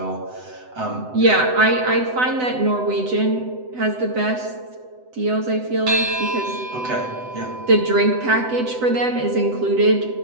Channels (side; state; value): left; late; 7.9 ms